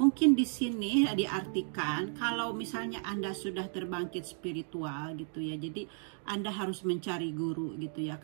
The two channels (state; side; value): silent; left; 55 dB below the other